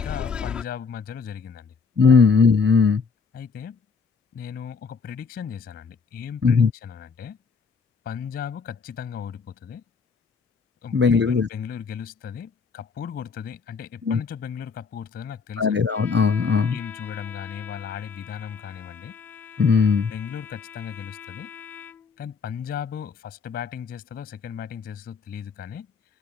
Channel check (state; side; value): quieter; right; 5.3 dB